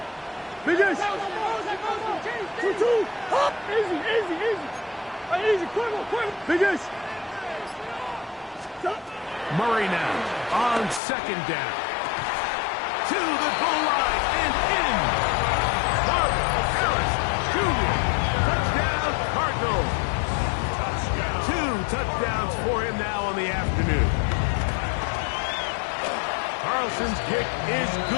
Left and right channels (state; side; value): drops out; right; at 11.0 s